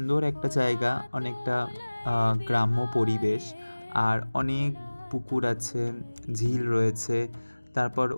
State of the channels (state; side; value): inverted; both; correlation -1.00